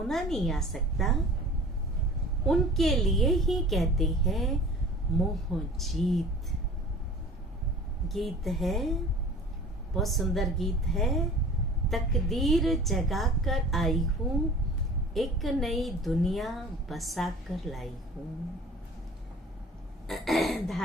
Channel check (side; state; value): both; normal; correlation 0.44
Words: नहीं आ सकता, उनके लिए ही कहते हैं मोह जीत। गीत है, बहुत सुंदर गीत है। तकदीर जगा कर आई हूँ, एक नई दुनिया बसा कर लाई हूँ।